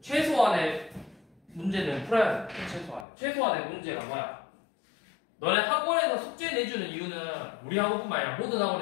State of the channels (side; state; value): right; drops out; at 3.1 s